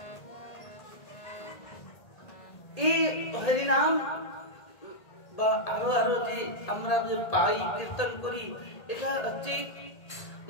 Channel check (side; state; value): right; late; 1.8 ms